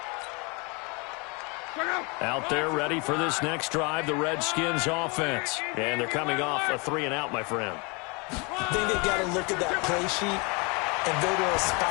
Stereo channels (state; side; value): quieter; right; 30.4 dB